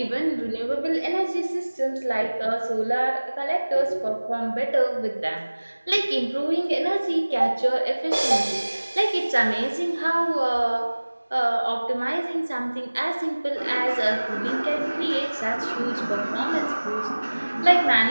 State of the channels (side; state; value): both; inverted; correlation -1.00